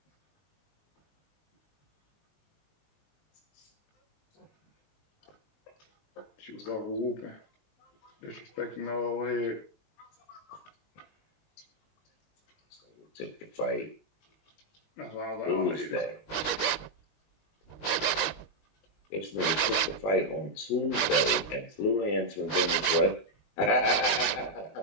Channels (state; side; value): late; right; 19 ms